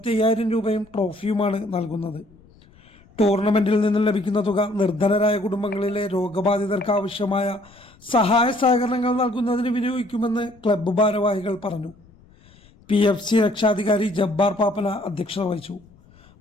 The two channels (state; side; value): noise; left; rumble, 28 dB below the sound